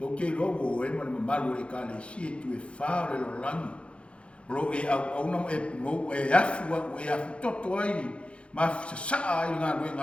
kei logo o e mani mamalu e kale si e tu e whaare lo langi. Lo e au aunam e pungo e afua o e afu toto ai. Ma Sasa'e ai ngā nui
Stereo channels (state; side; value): late; right; 0.060 ms